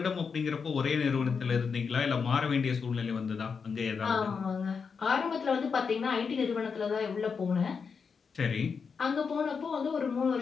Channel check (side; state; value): right; quieter; 5.7 dB